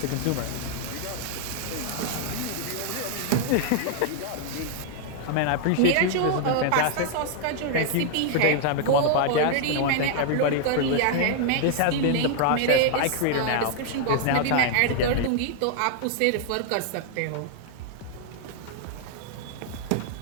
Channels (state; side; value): different; both; correlation 0.00